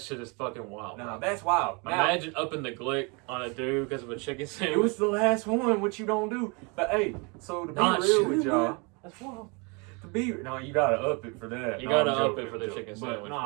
is fucking wild. Nah, that's wild. Imagine upping the glick on a dude because of a chicken sandwich. It was the last one, what you don't do. But hey, so to be real with y'all, that's wild. No, you gotta up it for that. You gotta up it for the chicken sandwich.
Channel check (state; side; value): quieter; left; 31.0 dB